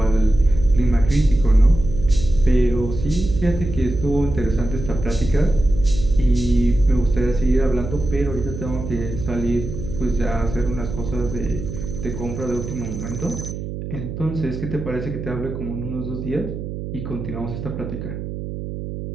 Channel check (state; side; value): noise; right; hum, 7 dB below the sound